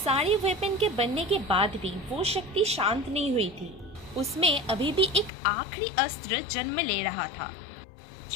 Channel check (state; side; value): drops out; right; at 5.3 s